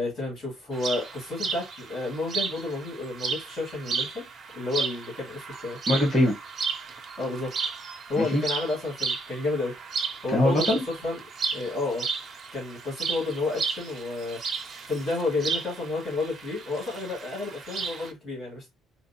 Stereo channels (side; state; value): both; normal; correlation 0.70